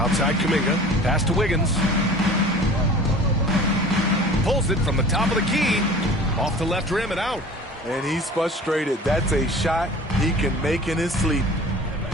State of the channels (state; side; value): normal; both; correlation 0.42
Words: Kuminga. Pass to Wiggins. Pulls it from the top of the key. Off the left rim and out. And he's frustrated. That's a shot he can make in his sleep.